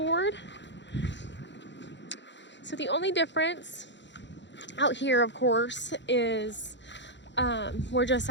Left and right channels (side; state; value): right; late; 0.52 ms